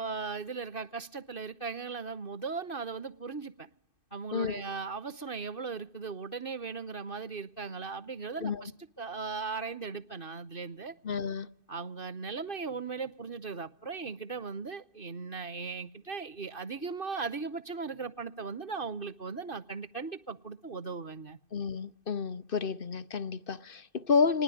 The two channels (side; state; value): right; late; 2.6 ms